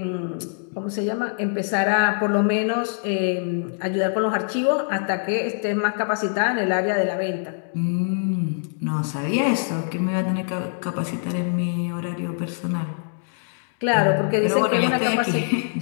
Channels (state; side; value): silent; right; digital silence